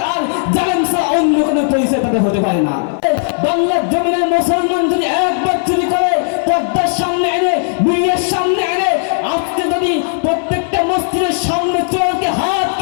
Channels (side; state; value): right; silent; digital silence